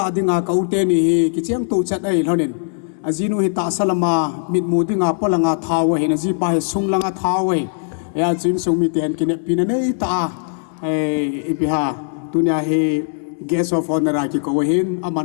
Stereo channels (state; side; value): silent; right; digital silence